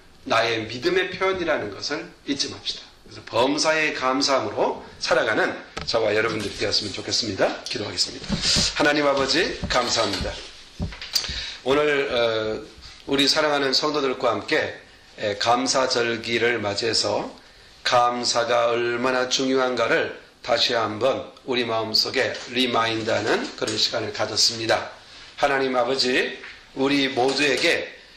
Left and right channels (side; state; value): both; identical; correlation 1.00